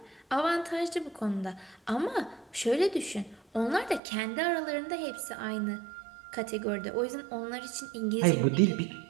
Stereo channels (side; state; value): left; drops out; at 4.0 s